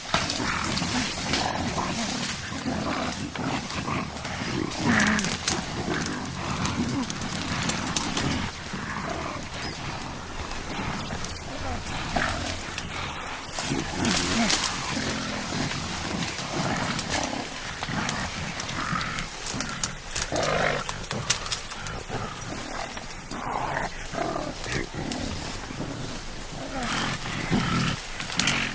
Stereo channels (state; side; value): identical; both; correlation 1.00